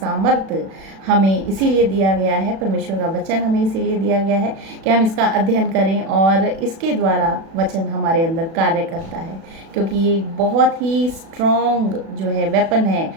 हमें इसीलिए दिया गया है, परमेश्वर का वचन हमें इसीलिए दिया गया है कि हम इसका अध्ययन करें और इसके द्वारा वचन हमारे अंदर कार्य करता है, क्योंकि ये बहुत ही स्ट्रॉन्ग जो है वेपन है।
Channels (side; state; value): left; late; 36 ms